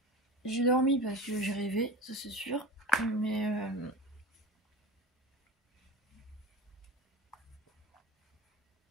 J'ai dormi parce que j'ai rêvé, ça c'est sûr. Mais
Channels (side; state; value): both; normal; correlation 0.31